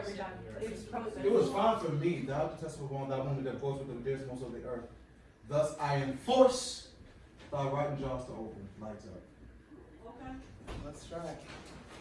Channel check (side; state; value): both; identical; correlation 1.00